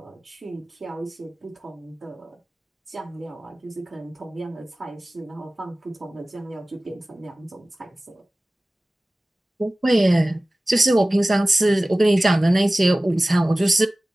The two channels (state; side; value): normal; both; correlation 0.97